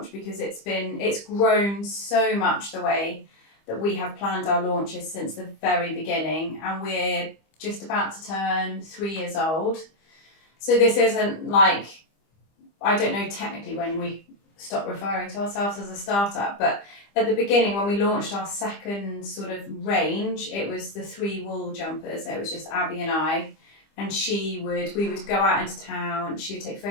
because it's grown so much the way that we have planned our launches since the very beginning, and we're just about to turn 3 years old. So this isn't like, I don't know technically when we stopped referring to ourselves as a startup, but at the beginning when we launched our second sort of range, it was the 3 wool jumpers. It was just Abby and I, and we would go out into town, she would take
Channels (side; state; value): right; late; 25 ms